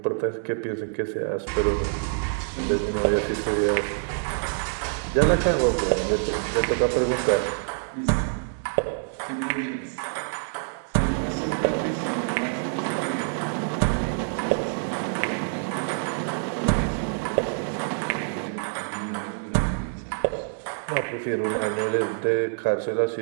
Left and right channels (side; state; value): left; silent; digital silence